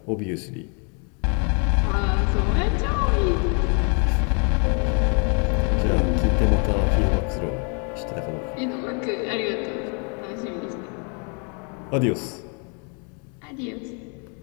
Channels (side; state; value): right; quieter; 37.3 dB